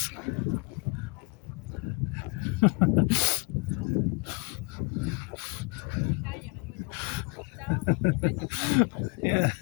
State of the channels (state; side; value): quieter; right; 31.6 dB